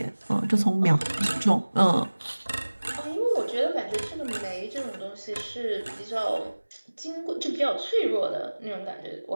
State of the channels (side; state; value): both; inverted; correlation -1.00